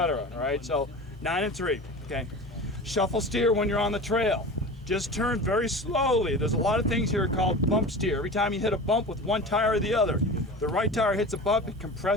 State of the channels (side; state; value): both; normal; correlation 0.33